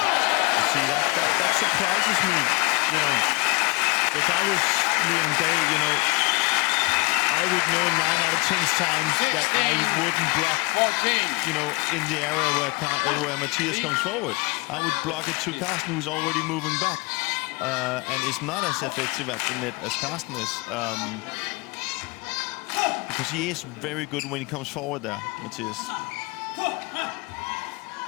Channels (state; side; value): quieter; right; 27.9 dB